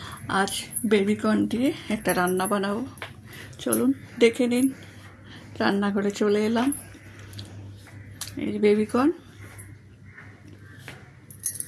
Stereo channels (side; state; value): both; identical; correlation 1.00